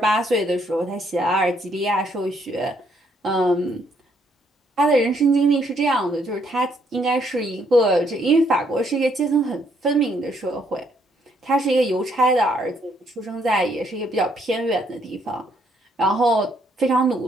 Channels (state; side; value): normal; both; correlation 0.70